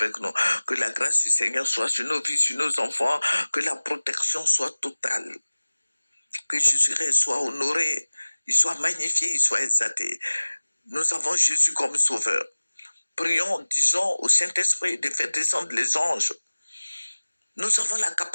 nous, que la grâce du Seigneur soit sur nos vies, sur nos enfants, que la protection soit totale, que Jésus-Christ soit honoré, il soit magnifié, il soit exalté. Nous avons Jésus comme sauveur. Prions, disons au Saint-Esprit de faire descendre les anges. Nous avons la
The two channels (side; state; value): both; inverted; correlation -1.00